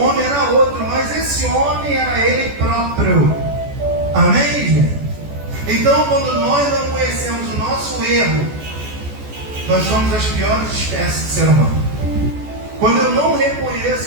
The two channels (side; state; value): left; late; 14 ms